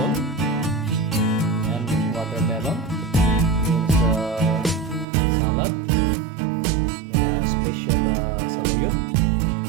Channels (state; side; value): drops out; left; at 5.1 s